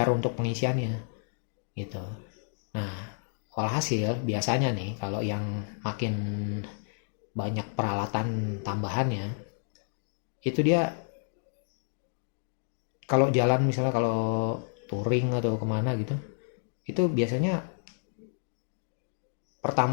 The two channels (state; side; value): silent; right; digital silence